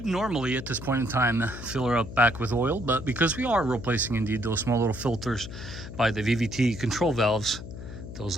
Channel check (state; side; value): noise; left; hum, 11 dB below the sound